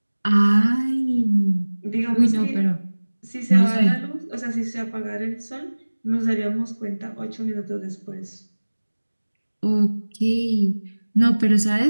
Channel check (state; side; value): inverted; both; correlation -1.00